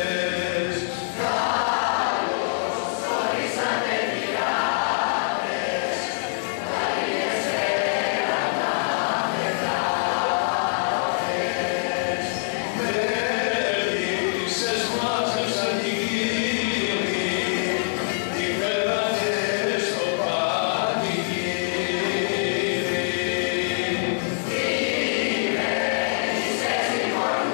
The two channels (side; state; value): right; silent; digital silence